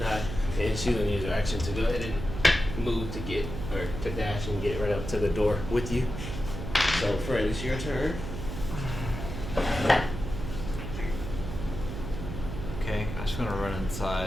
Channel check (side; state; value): right; noise; hum, 7 dB below the sound